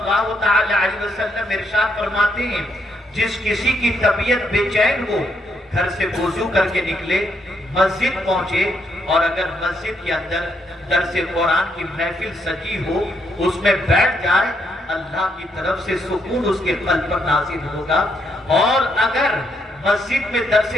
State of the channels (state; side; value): normal; both; correlation 0.75